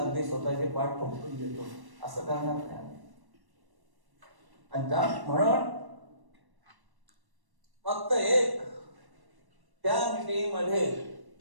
स्वतःचे पाठ ठोकून देतो असं करणार नाही आम्ही. आणि म्हणून फक्त एक त्या मीटिंग मध्ये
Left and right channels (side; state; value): left; late; 1.1 ms